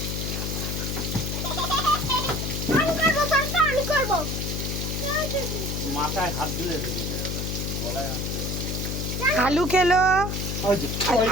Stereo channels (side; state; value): left; noise; hum, 2 dB below the sound